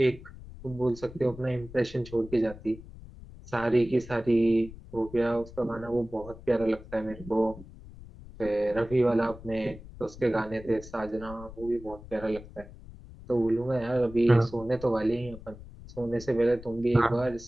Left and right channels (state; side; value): noise; left; rumble, 16 dB below the sound